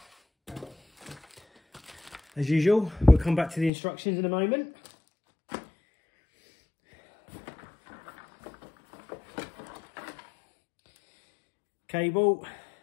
As usual, we'll come back to the instructions in a moment. Cable,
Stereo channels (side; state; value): right; drops out; at 3.7 s